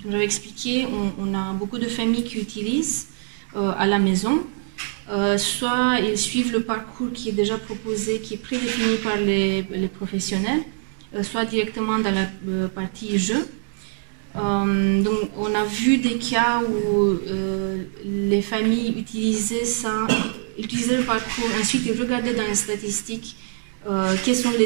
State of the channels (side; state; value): left; silent; digital silence